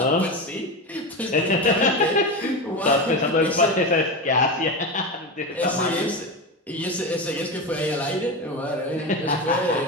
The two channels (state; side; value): normal; both; correlation 0.19